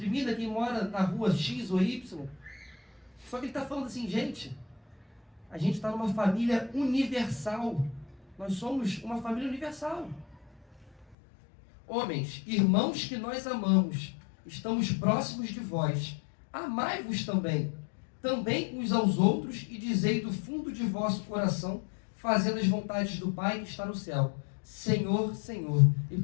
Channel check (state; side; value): drops out; right; at 11.1 s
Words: quem mora na rua X ou Y. Só que ele está falando assim: gente, a gente está numa família universal. Nós somos uma família universal. Homens, irmãos que nós amamos, estamos próximos de vós. Amai-vos também uns aos outros, e dizei do fundo de vosso coração, fazendo as vontades do Pai que está no céu. Senhor, Senhor, e